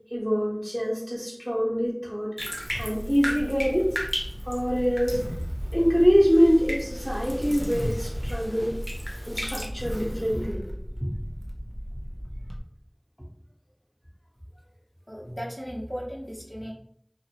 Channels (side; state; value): both; identical; correlation 1.00